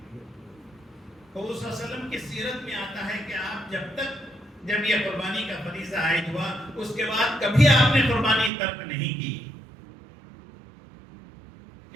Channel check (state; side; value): drops out; left; at 8.5 s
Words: حضور صلی اللہ علیہ وسلم کی سیرت میں آتا ہے کہ آپ جب یہ قربانی کا فریضہ عائد ہوا اس کے بعد کبھی آپ نے قربانی ترک نہیں کی.